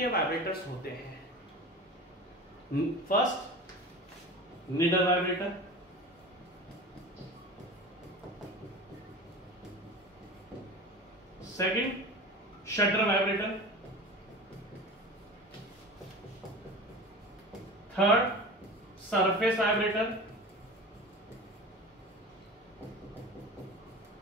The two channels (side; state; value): both; normal; correlation 0.34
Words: वाइब्रेटर्स होते हैं? First, needle vibrator, second, shutter vibrator, third, surface vibrator,